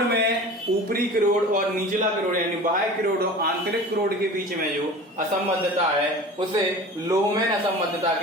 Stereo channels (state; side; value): normal; both; correlation 0.38